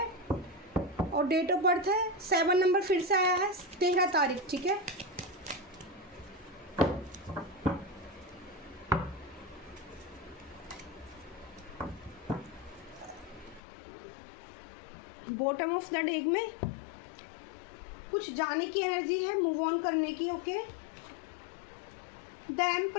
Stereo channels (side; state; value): right; drops out; at 13.6 s